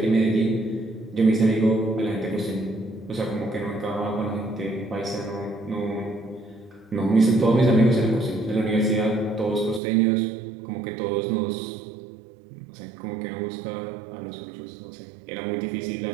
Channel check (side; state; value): left; drops out; at 9.8 s